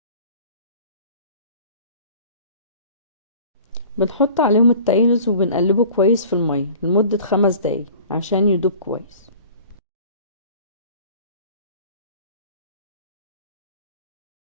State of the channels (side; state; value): both; inverted; correlation -0.45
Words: بنحط عليهم التايلز وبنقلبه كويس في المية لمدة 5 دقايق عشان يدوب كويس.